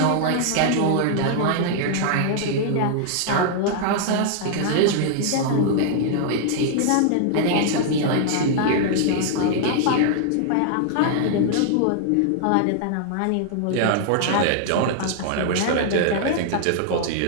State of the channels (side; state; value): both; different; correlation -0.01